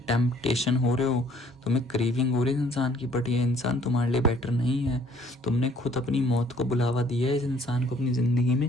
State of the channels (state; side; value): normal; both; correlation 0.59